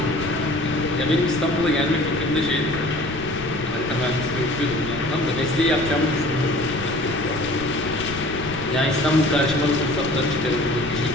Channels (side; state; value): left; noise; rumble, 12 dB below the sound